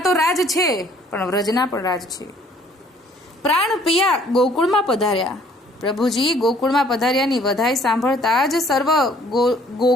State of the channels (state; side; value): normal; both; correlation 0.59